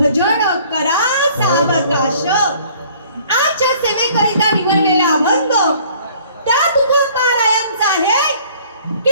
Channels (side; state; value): both; inverted; correlation -0.55